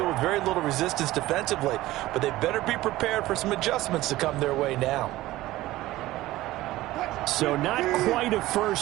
with very little resistance defensively. But they better be prepared for some adjustments to come their way now. So not quite a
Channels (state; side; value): quieter; left; 16.8 dB